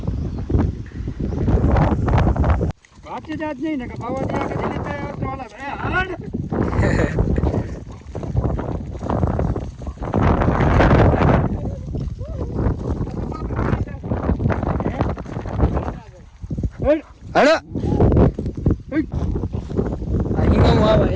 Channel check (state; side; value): identical; both; correlation 1.00